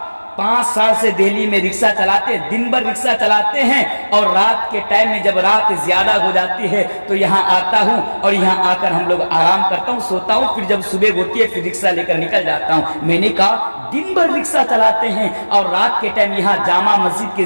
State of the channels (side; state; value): both; inverted; correlation -1.00